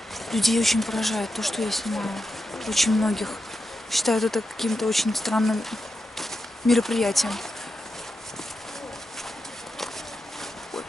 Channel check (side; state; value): both; normal; correlation 0.88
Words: Людей очень поражает то, что я снимаю. Очень многих считают это каким-то очень странным мероприятием.